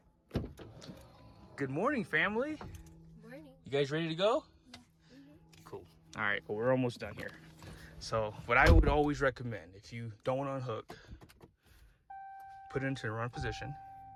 Good morning, family. Morning. You guys ready to go? Yeah. Cool. All right, well, we're almost done here. So what I would always recommend, if you don't want to unhook, put it into the run position.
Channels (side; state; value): both; identical; correlation 1.00